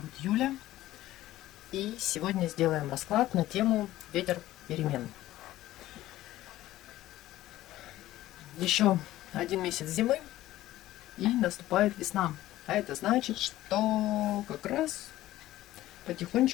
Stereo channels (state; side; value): quieter; right; 15.1 dB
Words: Юля. И сегодня сделаем расклад на тему ветер перемен. Еще один месяц зимы и наступает весна. А это значит, что как раз